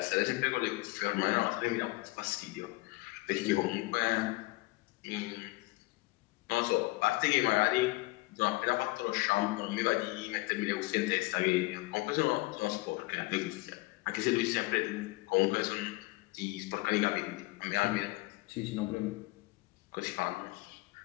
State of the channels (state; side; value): quieter; right; 22.1 dB